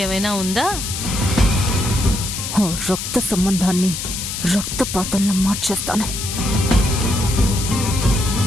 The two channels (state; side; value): noise; left; hiss, 5 dB below the sound